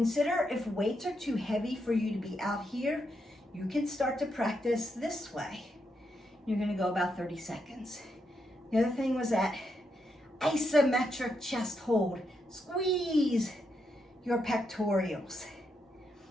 if weights are too heavy for you to be out here, you can start to practice this way. You're going to go about 30 seconds. The other thing was that isometric chest hold. Squeeze your pectorals.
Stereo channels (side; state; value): both; normal; correlation 0.81